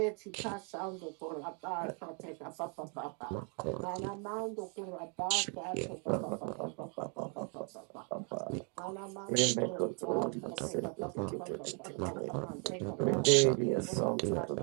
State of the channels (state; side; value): quieter; left; 38.1 dB